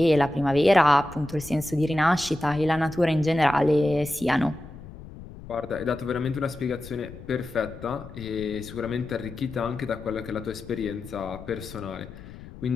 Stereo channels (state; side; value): noise; left; rumble, 15 dB below the sound